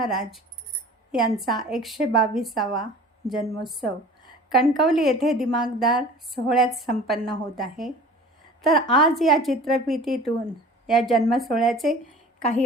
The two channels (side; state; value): both; normal; correlation 0.43